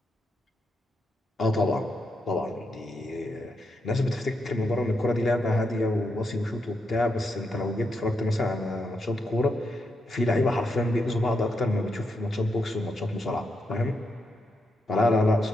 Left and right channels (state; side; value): normal; both; correlation 0.82